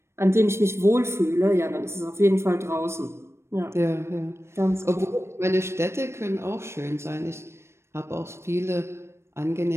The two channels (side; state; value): left; late; 0.13 ms